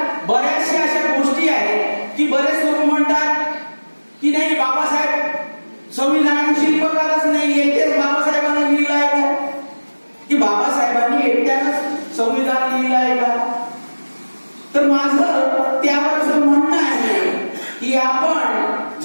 बऱ्याचशा अशा गोष्टी आहेत की बरेच लोक म्हणतात की नाही, बाबासाहेब संविधानाचे शिल्पकारच नाही, एकटेच बाबासाहेबांना लिहिलं आहे का, की बाबासाहेबांनी एकट्यानंच संविधान लिहिलं आहे का? तर माझं त्यावर असं म्हणणं आहे की आपण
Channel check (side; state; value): both; inverted; correlation -1.00